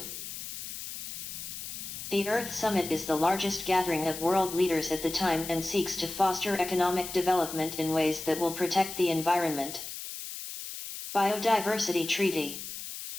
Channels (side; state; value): left; noise; hiss, 8 dB below the sound